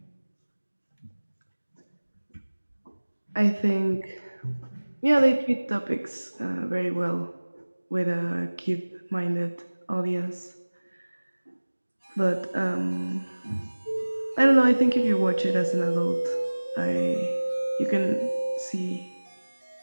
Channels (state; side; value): inverted; both; correlation -1.00